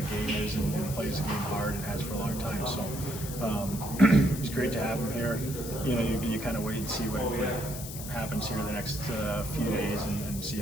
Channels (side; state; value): left; noise; hiss, 10 dB below the sound